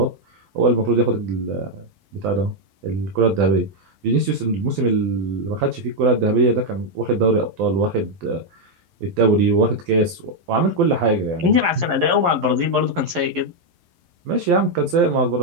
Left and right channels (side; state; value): left; late; 11 ms